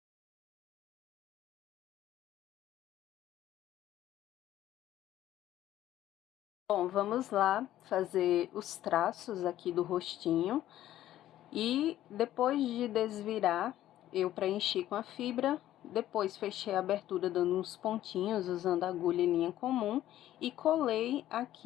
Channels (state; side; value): quieter; right; 13.2 dB